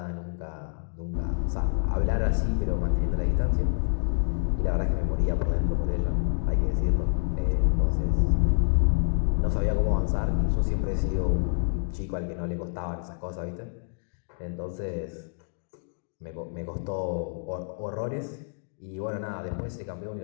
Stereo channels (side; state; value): right; silent; digital silence